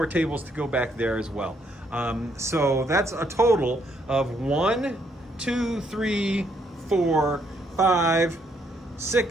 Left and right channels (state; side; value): normal; both; correlation 0.72